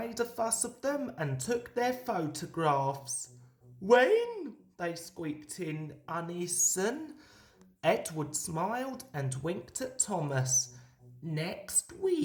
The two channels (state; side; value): identical; both; correlation 1.00